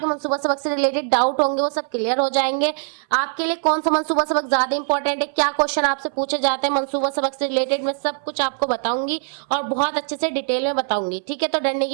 मंसूबा सबक से रिलेटेड डाउट होंगे वो सब क्लियर हो जाएंगे। आपके लिए कौन सा मंसूबा सबक ज्यादा इंपॉर्टेंट है, क्या क्वेश्चन आपसे पूछे जाते हैं मंसूबा सबक से रिलेटेड, मैं सब कुछ आपको बताऊंगी और बहुत अच्छे से डिटेल में बताऊंगी। ठीक है, तो डरने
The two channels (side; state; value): left; silent; 62 dB below the other